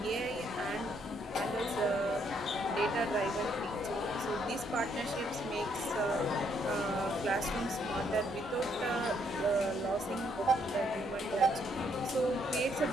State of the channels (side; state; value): both; normal; correlation 0.71